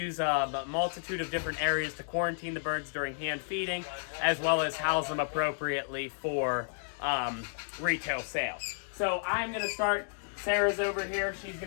a multitude of different areas to quarantine the birds during hand feeding, as well as house them appropriately for retail sale. So I'm going to start. Sarah's over here. She's going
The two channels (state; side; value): silent; right; digital silence